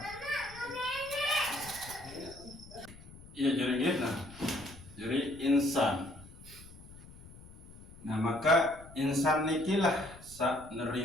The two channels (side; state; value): left; noise; rumble, 18 dB below the sound